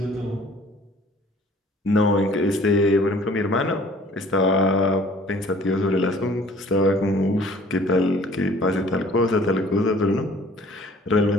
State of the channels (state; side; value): normal; both; correlation 0.53